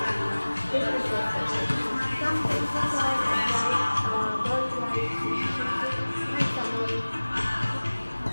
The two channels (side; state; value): both; inverted; correlation -1.00